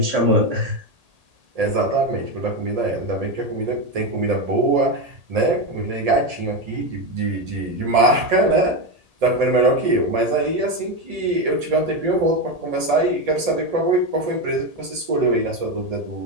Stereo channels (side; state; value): left; late; 1.8 ms